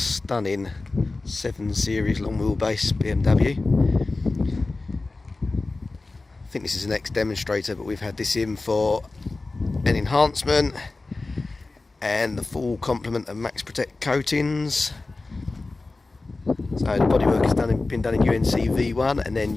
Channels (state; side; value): quieter; right; 3.4 dB